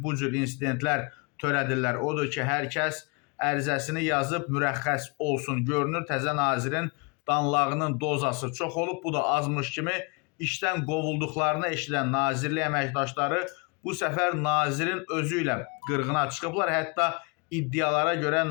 bu cür insidentlər törədirlər. Odur ki, hər kəs ərizəsini yazıb mürəxxəs olsun. Görünür, təzə nazirin danlağının dozası çox olub. Bu da azmış kimi işdən qovulduqlarını eşidən nazirlik əməkdaşları bu səfər nazirin özü ilə qırğına çıxıblar. Hətta iddialara görə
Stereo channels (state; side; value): quieter; right; 31.7 dB